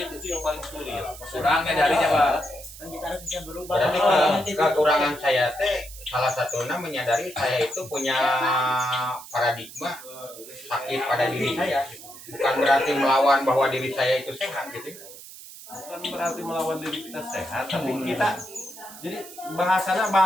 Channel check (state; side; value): noise; right; hiss, 16 dB below the sound